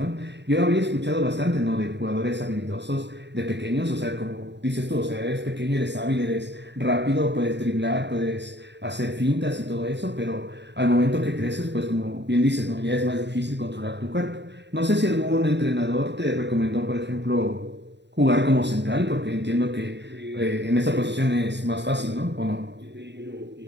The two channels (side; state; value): left; late; 0.51 ms